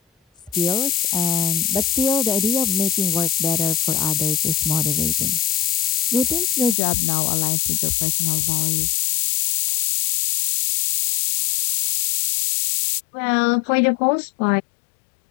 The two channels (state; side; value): drops out; right; at 6.8 s